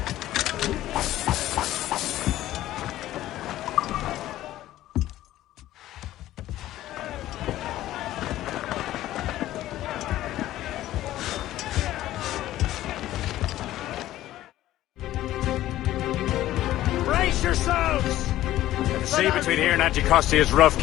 The sea between here and Anticosti is rough,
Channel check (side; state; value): right; quieter; 14.3 dB